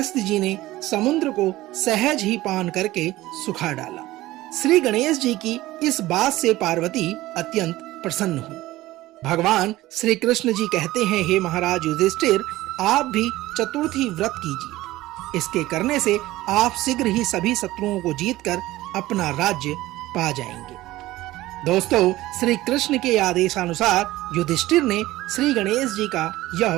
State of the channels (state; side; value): quieter; left; 17.1 dB